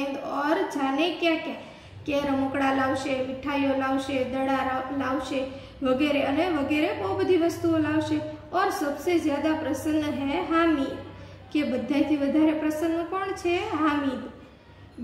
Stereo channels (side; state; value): both; identical; correlation 1.00